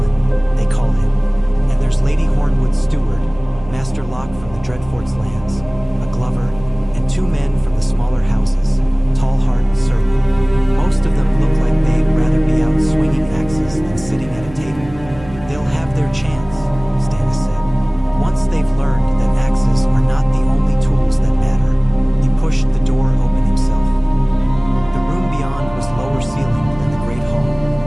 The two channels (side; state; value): right; noise; hum, 18 dB below the sound